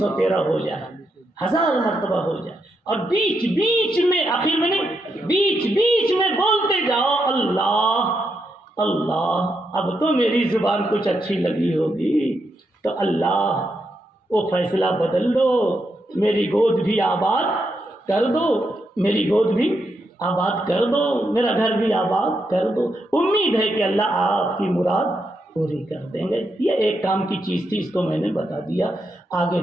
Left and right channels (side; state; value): both; normal; correlation 0.82